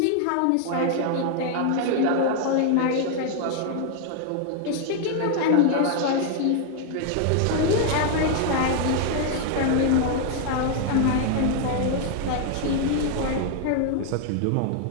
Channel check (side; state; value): both; different; correlation 0.00